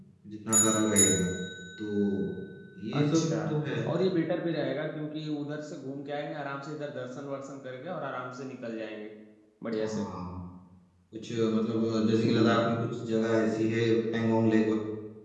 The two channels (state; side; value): identical; both; correlation 1.00